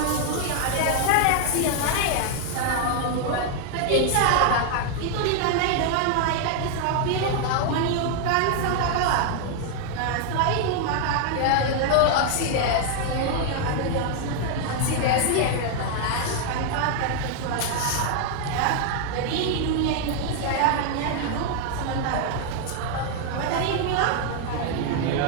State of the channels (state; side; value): different; both; correlation 0.00